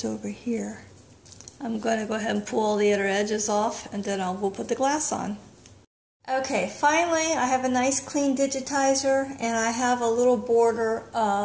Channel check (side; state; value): both; identical; correlation 1.00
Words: over here. I'm going to go ahead and pull all the other edges off, and then we'll put the glass on. Okay, finally I have a nice clean digitizer, and I have a little border